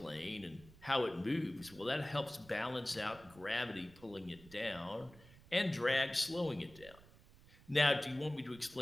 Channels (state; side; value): noise; right; rumble, 22 dB below the sound